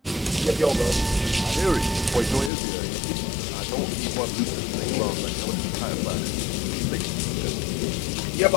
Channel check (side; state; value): right; drops out; at 2.5 s